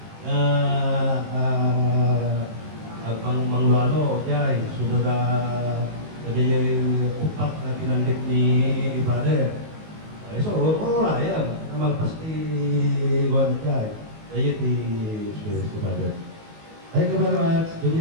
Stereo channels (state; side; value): late; left; 19 ms